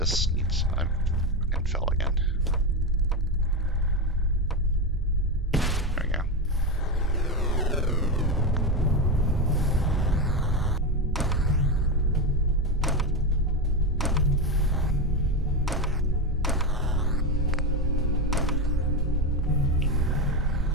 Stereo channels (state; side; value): normal; both; correlation 0.13